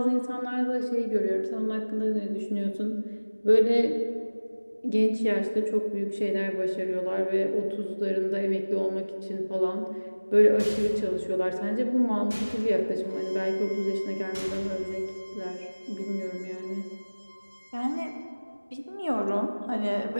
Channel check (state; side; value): inverted; both; correlation -1.00